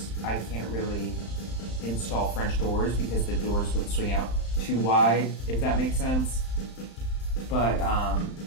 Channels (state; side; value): late; right; 35 ms